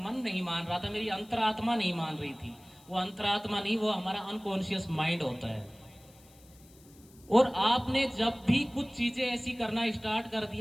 नहीं मान रहा था, मेरी अंतरात्मा नहीं मान रही थी। वो अंतरात्मा नहीं, वो हमारा अनकॉन्शियस माइंड होता है। और आपने जब भी कुछ चीजें ऐसी करना स्टार्ट कर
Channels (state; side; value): noise; left; hiss, 26 dB below the sound